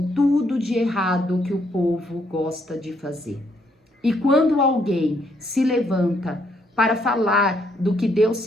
tudo de errado que o povo gosta de fazer. E quando alguém se levanta para falar do que Deus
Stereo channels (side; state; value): both; normal; correlation 0.72